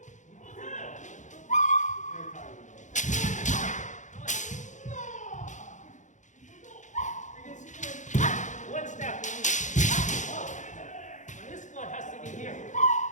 You can see one step. Now this one has to be here.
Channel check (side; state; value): right; late; 0.36 ms